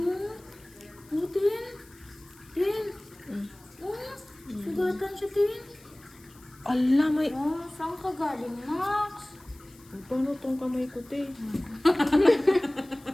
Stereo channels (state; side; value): noise; left; hiss, 26 dB below the sound